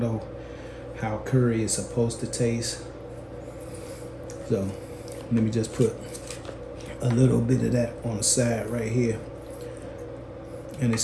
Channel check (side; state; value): both; identical; correlation 1.00